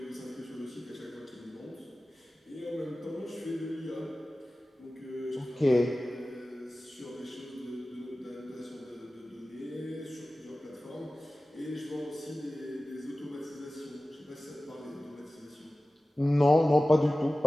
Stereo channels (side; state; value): both; normal; correlation 0.96